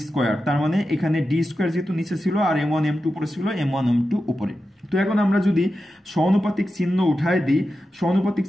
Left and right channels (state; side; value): normal; both; correlation 0.91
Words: square. তার মানে এখানে ডি স্কোয়ার যেহেতু নিচে ছিল আর m1 m2 উপরে ছিল, m1 m2 উপরে। তো এখন আমরা যদি সমানুপাতিক চিহ্ন উঠায় দিই, সমানুপাতিক